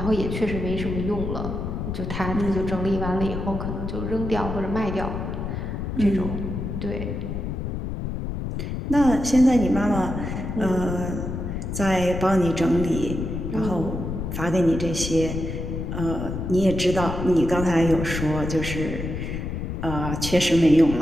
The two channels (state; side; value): noise; left; rumble, 4 dB below the sound